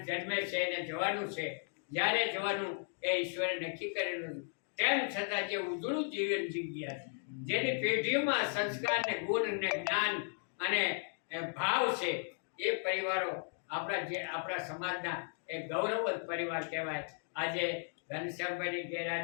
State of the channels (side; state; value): right; silent; 54 dB below the other